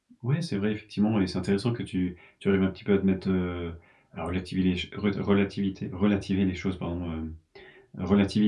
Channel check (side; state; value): both; identical; correlation 1.00